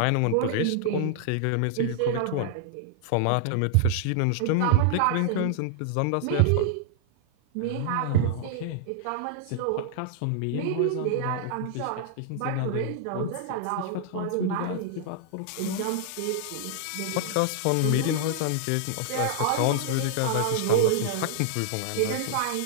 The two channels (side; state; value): both; different; correlation -0.01